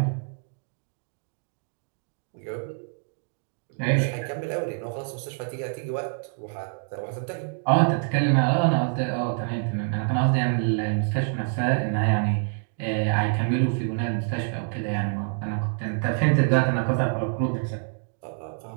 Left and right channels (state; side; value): silent; left; 61 dB below the other